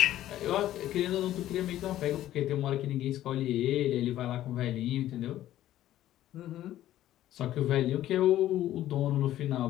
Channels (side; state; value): right; quieter; 13.3 dB